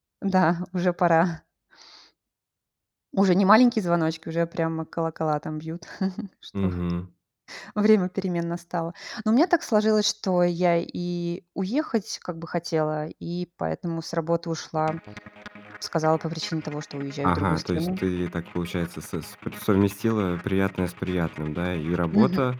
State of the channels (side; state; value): both; identical; correlation 1.00